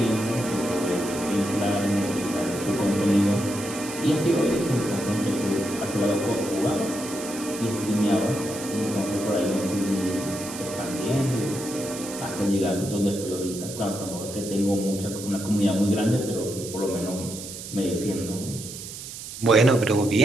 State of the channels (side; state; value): right; noise; hiss, 10 dB below the sound